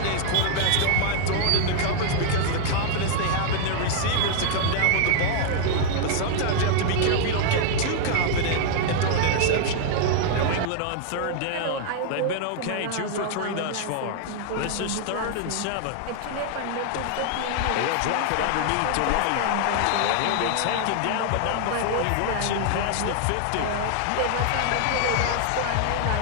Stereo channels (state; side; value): different; both; correlation 0.00